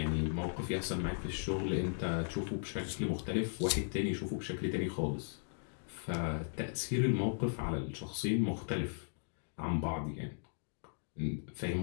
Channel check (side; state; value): right; silent; digital silence